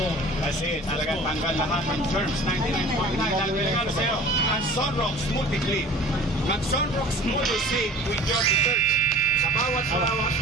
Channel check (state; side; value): normal; both; correlation 0.43